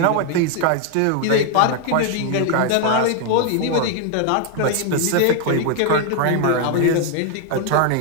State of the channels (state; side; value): different; both; correlation 0.00